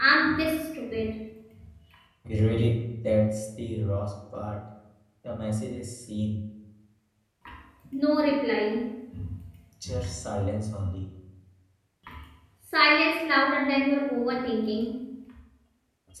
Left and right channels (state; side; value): identical; both; correlation 1.00